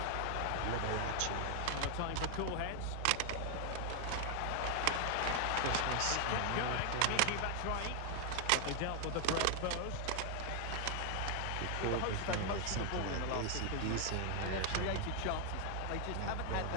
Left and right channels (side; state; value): both; different; correlation 0.00